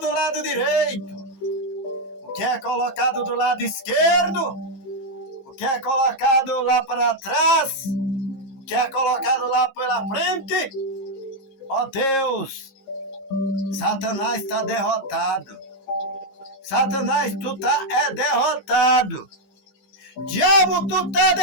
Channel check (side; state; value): right; late; 15 ms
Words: lado direito, o que é colocado do lado esquerdo, o que é colocado lá para trás, o que é colocado lá pela frente, ó Deus, Satanás está derrotado. Satanás, tu tá derrotado. Diabo, tu tá